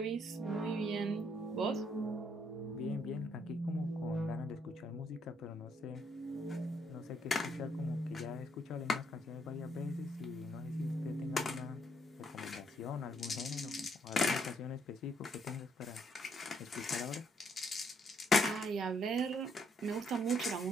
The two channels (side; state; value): both; normal; correlation 0.72